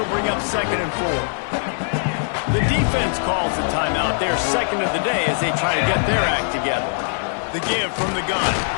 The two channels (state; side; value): silent; right; digital silence